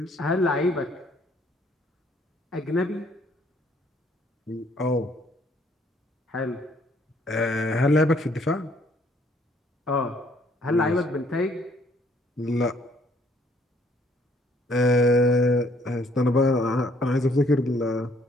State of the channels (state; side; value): normal; both; correlation 0.64